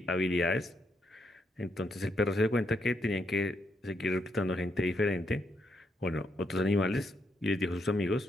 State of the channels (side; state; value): both; normal; correlation 0.78